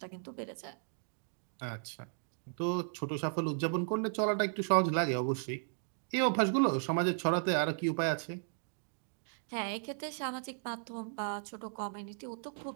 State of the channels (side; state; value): left; silent; digital silence